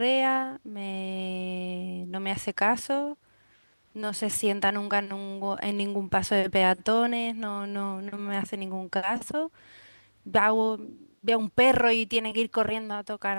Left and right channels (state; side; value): inverted; both; correlation -1.00